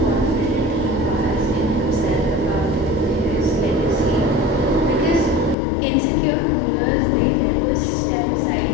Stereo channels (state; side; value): drops out; right; at 5.6 s